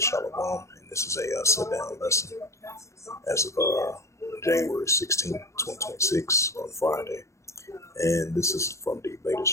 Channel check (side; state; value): right; late; 0.14 ms